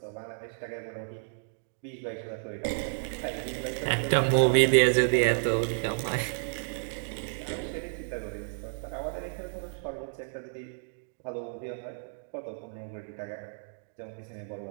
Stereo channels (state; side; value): silent; left; digital silence